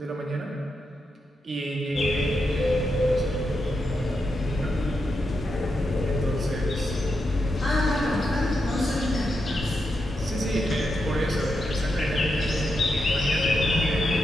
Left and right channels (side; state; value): both; normal; correlation 0.85